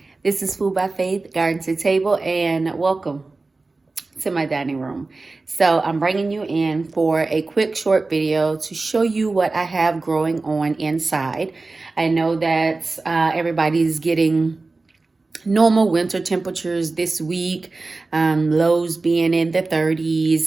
this is Food by Faith, Garden to Table, and welcome to my dining room. So I'm bringing you in for a quick short video to show you what I have growing on inside. I know that everybody's getting normal winter temperatures this week, lows being in the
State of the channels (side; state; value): left; quieter; 3.5 dB